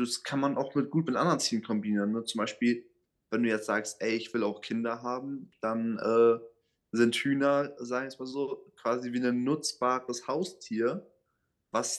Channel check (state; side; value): identical; both; correlation 1.00